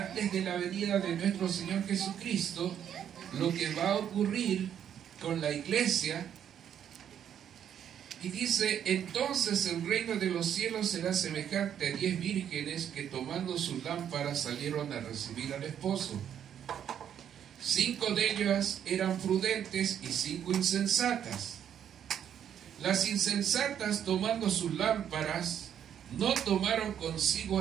de la venida de nuestro Señor Jesucristo, lo que va a ocurrir con la iglesia. Y dice, entonces el reino de los cielos será semejante a 10 vírgenes que tomando sus lámparas salieron a recibir al esposo. 5 de ellas eran prudentes y 5 insensatas. Las insensatas, tomando sus lámparas, no tomaron consigo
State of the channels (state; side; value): quieter; left; 9.3 dB